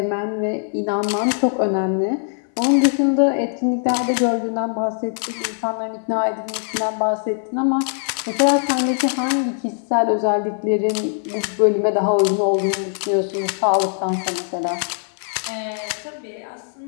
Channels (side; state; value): right; silent; 62 dB below the other